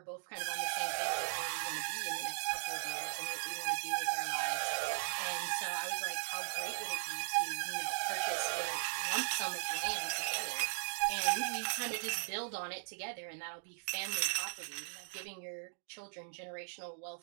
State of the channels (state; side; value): silent; left; digital silence